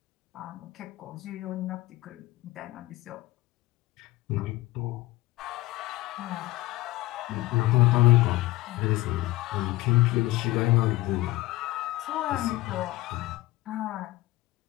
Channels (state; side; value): quieter; right; 18.8 dB